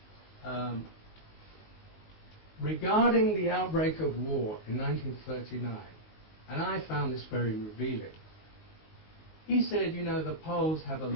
regarding the outbreak of war in 1939, and I found this very revealing, he said, you know, the Poles have a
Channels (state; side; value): late; right; 19 ms